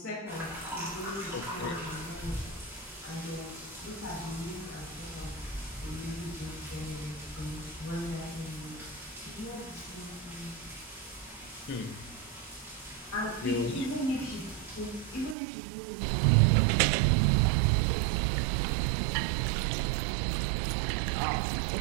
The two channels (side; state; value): left; drops out; at 15.4 s